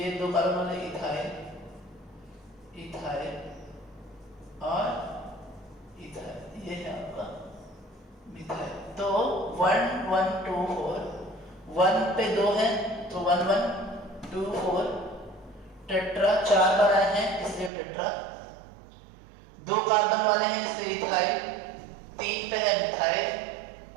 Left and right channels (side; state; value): left; drops out; at 17.7 s